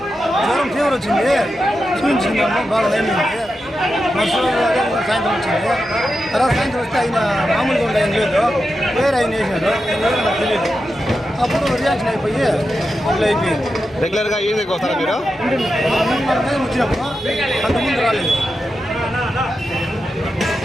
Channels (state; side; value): normal; both; correlation 0.89